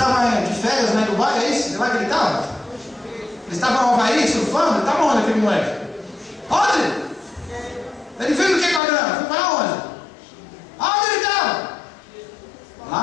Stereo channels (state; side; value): drops out; right; at 8.8 s